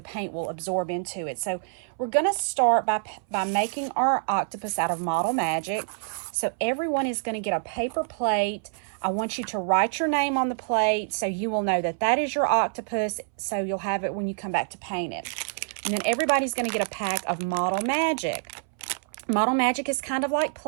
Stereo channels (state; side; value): silent; left; 60 dB below the other